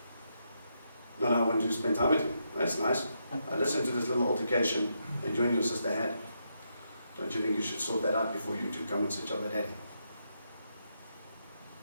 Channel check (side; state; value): both; inverted; correlation -0.81